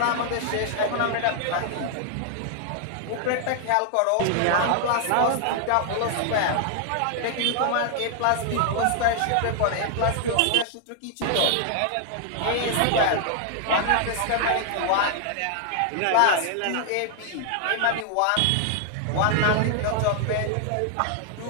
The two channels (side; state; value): both; different; correlation 0.00